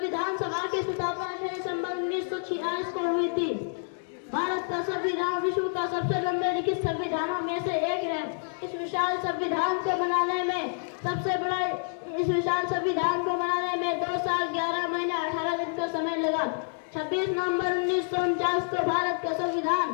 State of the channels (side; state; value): right; silent; digital silence